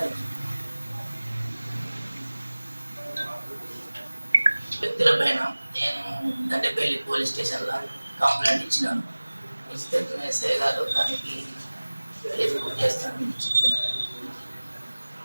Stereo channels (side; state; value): both; inverted; correlation -1.00